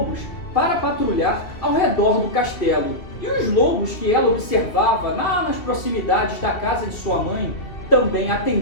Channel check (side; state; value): right; late; 2.7 ms